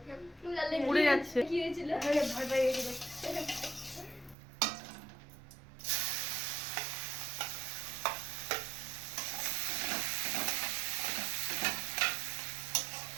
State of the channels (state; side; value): drops out; left; at 4.4 s